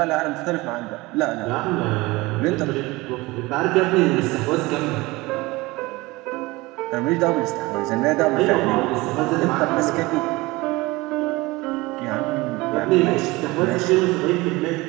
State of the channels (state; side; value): quieter; left; 21.7 dB